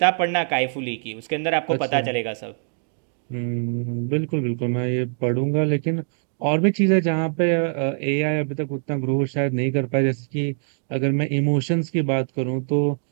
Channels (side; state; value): left; silent; digital silence